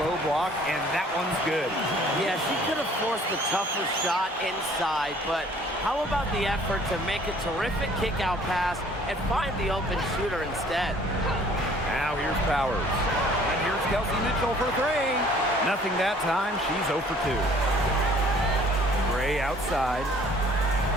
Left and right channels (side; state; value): both; normal; correlation 0.55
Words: low block, and that one's good. Yeah, she could have forced the tougher shot inside, but how about the effort to make a terrific kick-out pass and find the open shooter instead? Now here's Powers. And here's Kelsey Mitchell for 3. Nothing that time. She's 0 for 2. Gray outside.